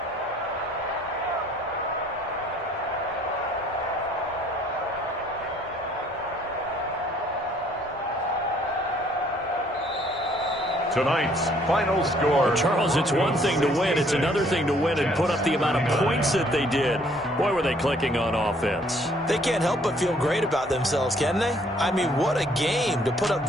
Tonight's final score. Charles, it's one thing to win. It's another thing to win and put up the amount of points that they did. Boy, were they clicking on offense. They can't help but feel great about themselves, can they? I mean, what a game to put up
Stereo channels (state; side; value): normal; both; correlation 0.62